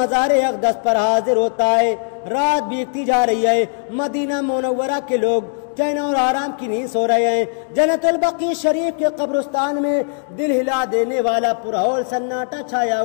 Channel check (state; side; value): silent; right; digital silence